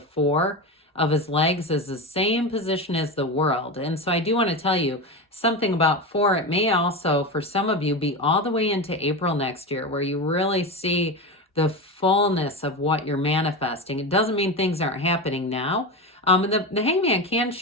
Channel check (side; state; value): both; normal; correlation 0.20